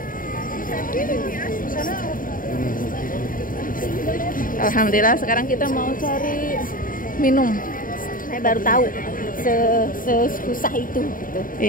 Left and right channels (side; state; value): right; late; 0.40 ms